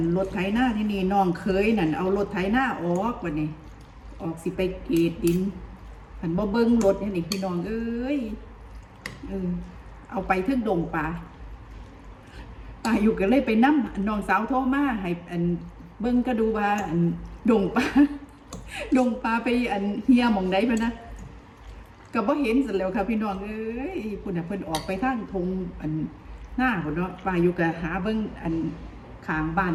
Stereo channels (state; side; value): identical; both; correlation 1.00